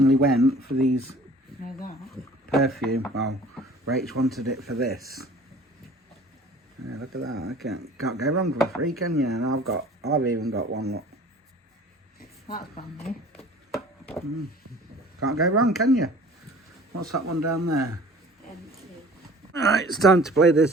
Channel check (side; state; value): both; normal; correlation 0.47